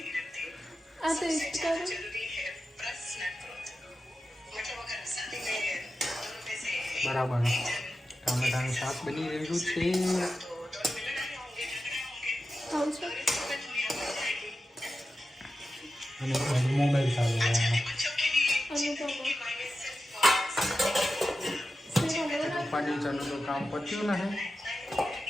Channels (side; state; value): both; normal; correlation 0.92